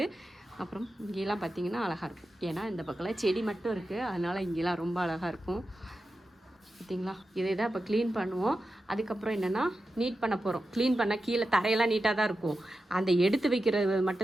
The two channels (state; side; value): normal; both; correlation 0.91